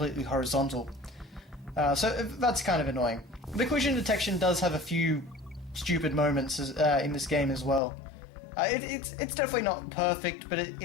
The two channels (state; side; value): drops out; right; at 7.8 s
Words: horizontal. So that's kind of annoying. The collision detection does have a few stupid moments in this game as well. It's definitely not perfect, but